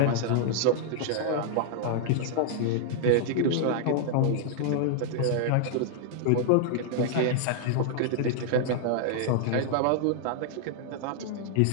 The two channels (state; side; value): different; both; correlation -0.01